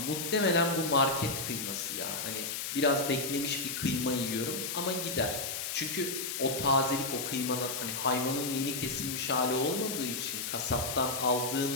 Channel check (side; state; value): left; noise; hiss, 4 dB below the sound